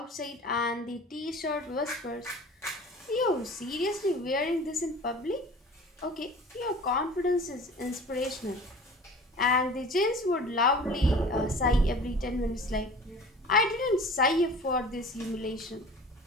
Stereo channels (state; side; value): normal; both; correlation 0.42